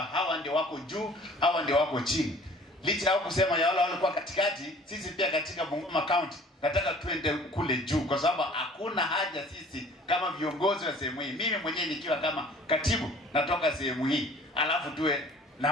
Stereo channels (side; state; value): both; normal; correlation 0.51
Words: hawa ndio wako juu, hawa ndio wako chini. Licha ya kusema ya wale walikuwa katikati, sisi pia katika Bungoma County nataka tuende kule juu, kwa sababu hakuna haja sisi kama viongozi wa sehemu hii, mimi mwenyewe nikiwa kama katibu natoka sehemu hii, alafu tuwe